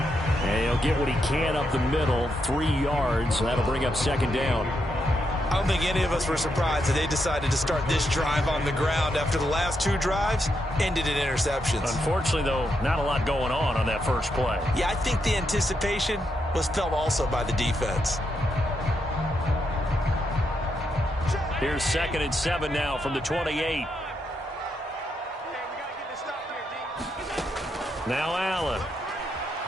he'll get what he can up the middle, 3 yards. That'll bring up second down. I don't think any of us were surprised that they decided to start this drive on the ground after the last 2 drives ended in interceptions. Unfortunately, though, not a lot going on that first play. Yeah, I think the anticipation was felt also by the defense. Here's 2nd and 7 now from the 28. Now Allen.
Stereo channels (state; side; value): normal; both; correlation 0.81